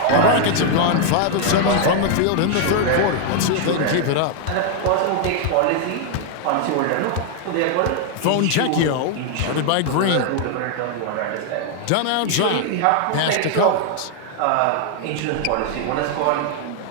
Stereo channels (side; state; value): both; different; correlation 0.00